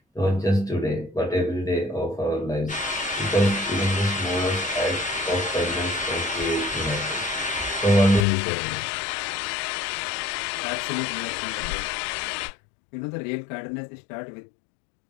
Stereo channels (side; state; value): right; drops out; at 8.2 s